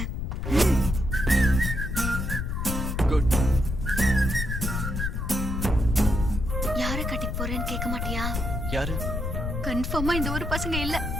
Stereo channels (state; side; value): noise; left; rumble, 2 dB below the sound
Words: குட். யார கட்டிக்க போறேன்னு கேட்க மாட்டியா? யாரு? கன்ஃபார்மா இந்த ஊர் பசங்க இல்ல.